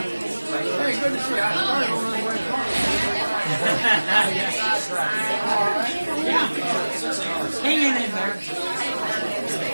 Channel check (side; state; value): both; inverted; correlation -1.00